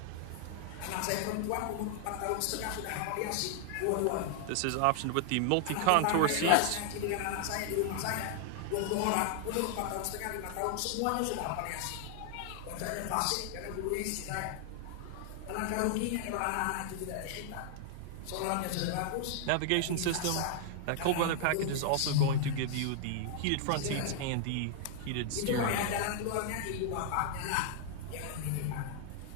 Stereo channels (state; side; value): different; both; correlation 0.00